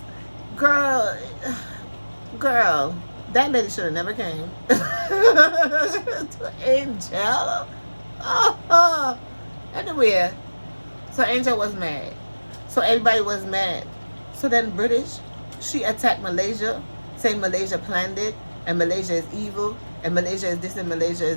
Girl, that lady should have never came to Angel. Anyway, so Angel was mad. So everybody was mad. So then British, she attacked Malaysia, saying Malaysia planned it, and Malaysia is evil, and Malaysia is this, and Malaysia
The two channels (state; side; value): inverted; both; correlation -1.00